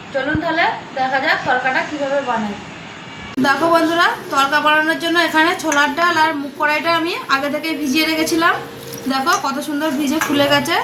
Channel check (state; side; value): identical; both; correlation 1.00